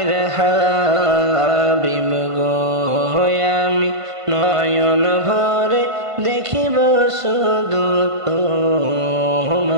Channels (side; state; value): left; late; 1.5 ms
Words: হাবিব গো, আমি নয়ন ভরে দেখিব শুধু তোমারে।